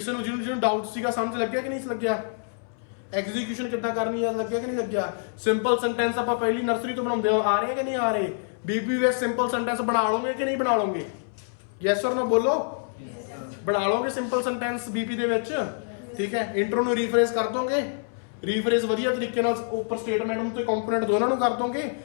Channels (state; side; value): silent; right; 61 dB below the other